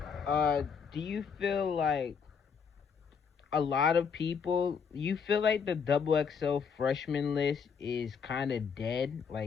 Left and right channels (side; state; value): right; quieter; 6.3 dB